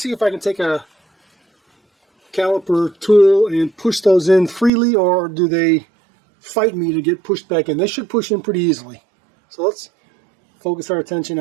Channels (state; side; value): drops out; left; at 4.7 s